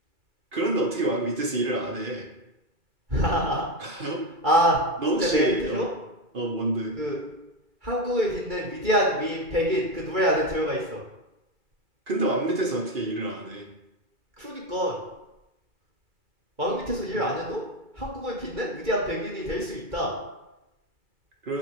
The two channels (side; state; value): left; late; 2.5 ms